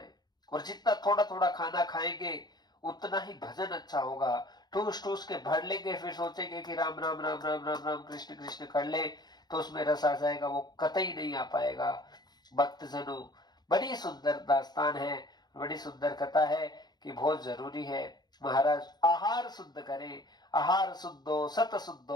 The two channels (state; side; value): late; right; 0.20 ms